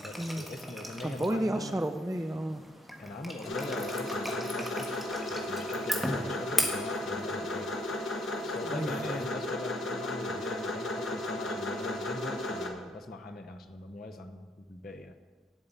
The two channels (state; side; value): normal; both; correlation 0.72